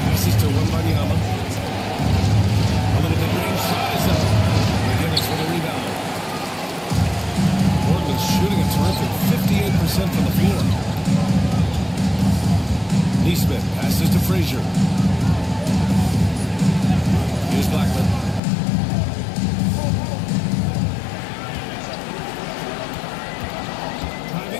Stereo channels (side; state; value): right; drops out; at 18.4 s